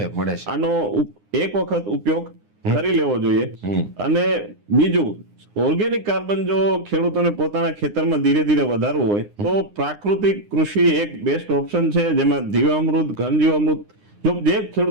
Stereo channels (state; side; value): late; left; 9.8 ms